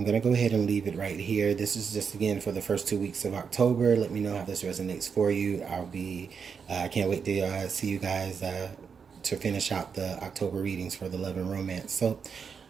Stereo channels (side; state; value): left; quieter; 6.2 dB